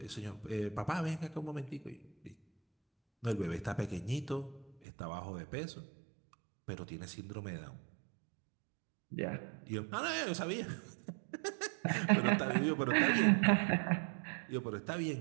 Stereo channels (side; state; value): left; drops out; at 4.8 s